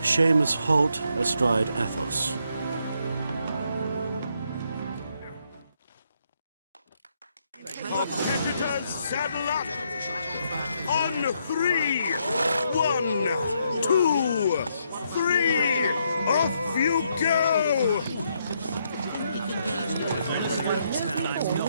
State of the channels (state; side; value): inverted; both; correlation -0.75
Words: Holt astride Athos. Competitors, saddle up! On 3! 1, 2, 3! Off you go!